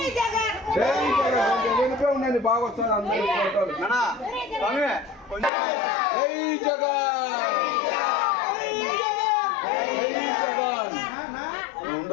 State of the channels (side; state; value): right; drops out; at 5.5 s